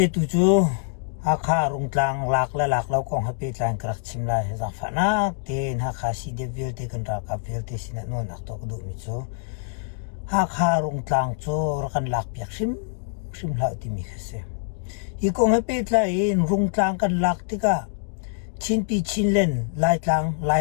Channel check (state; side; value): silent; right; digital silence